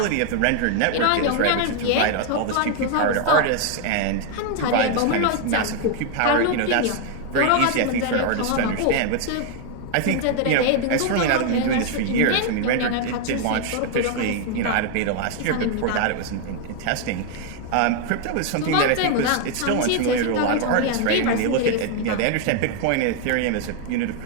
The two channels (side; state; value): both; different; correlation 0.01